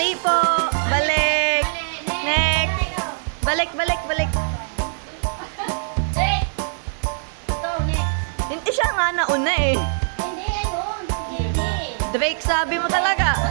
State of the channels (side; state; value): left; silent; digital silence